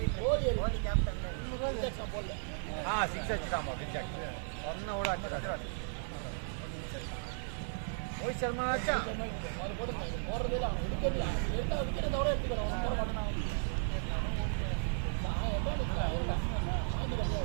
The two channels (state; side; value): silent; left; digital silence